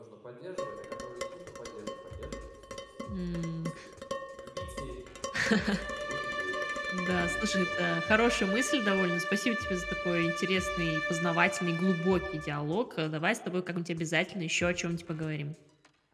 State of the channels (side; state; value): both; identical; correlation 1.00